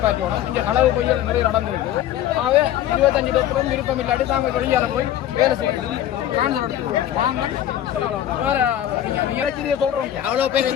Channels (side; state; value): right; quieter; 11.7 dB